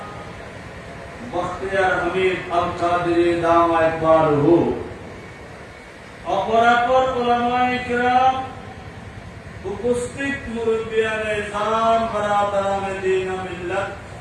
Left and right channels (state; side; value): identical; both; correlation 1.00